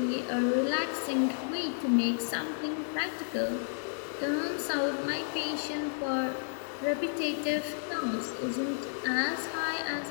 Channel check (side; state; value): right; silent; digital silence